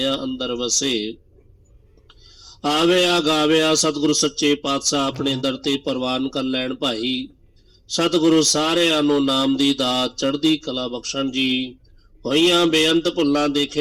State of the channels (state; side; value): identical; both; correlation 1.00